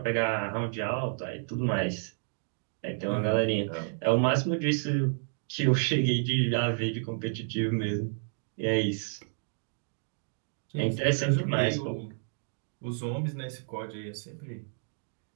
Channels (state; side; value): silent; left; digital silence